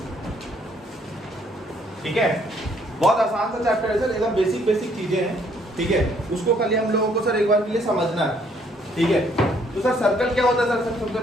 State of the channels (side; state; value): both; normal; correlation 0.66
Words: ठीक है, बहुत आसान सा चैप्टर है सर, एकदम बेसिक चीजें हैं, ठीक है। उसको खाली हम लोगों को सर एक बार के लिए समझना है, ठीक है। तो सर सर्कल क्या होता है सर, सबसे